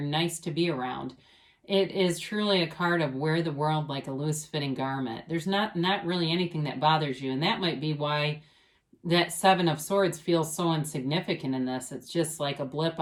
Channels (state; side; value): identical; both; correlation 1.00